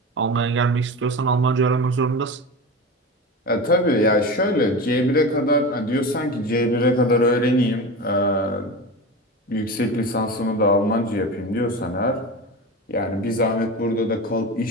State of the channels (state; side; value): normal; both; correlation 0.27